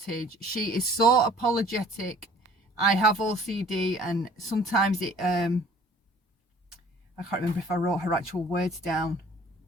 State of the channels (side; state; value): both; normal; correlation 0.52